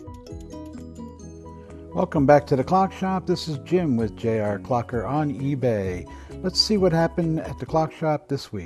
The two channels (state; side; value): identical; both; correlation 1.00